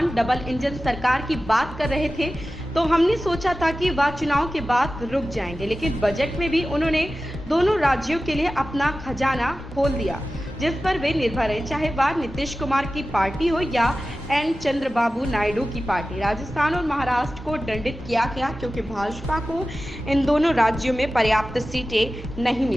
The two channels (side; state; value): both; normal; correlation 0.95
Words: डबल इंजन सरकार की बात कर रहे थे तो हमने सोचा था कि वह चुनाव के बाद रुक जाएंगे, लेकिन बजट में भी उन्होंने दोनों राज्यों के लिए अपना खजाना खोल दिया जिस पर वे निर्भर हैं, चाहे वह नीतीश कुमार की पार्टी हो या एन चंद्रबाबू नायडू की पार्टी। राजस्थान और महाराष्ट्र को दंडित किया गया क्योंकि भाजपा को इन दोनों राज्यों में पर्याप्त सीटें नहीं